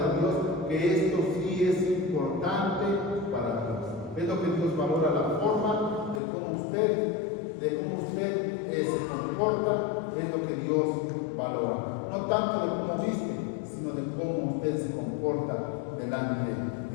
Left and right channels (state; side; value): drops out; right; at 6.2 s